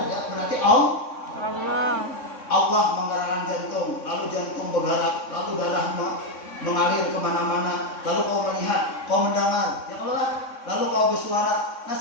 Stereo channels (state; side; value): late; right; 3.6 ms